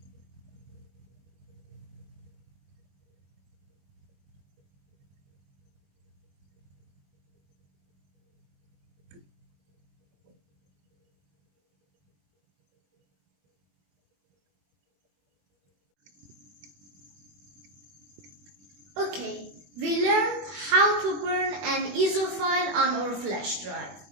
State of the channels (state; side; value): late; left; 21 ms